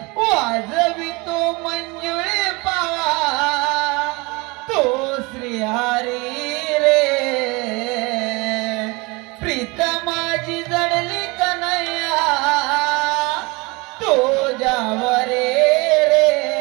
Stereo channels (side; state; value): left; quieter; 26.0 dB